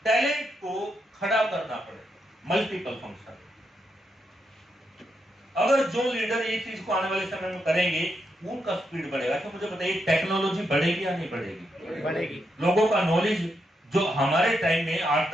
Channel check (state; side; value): normal; both; correlation 0.82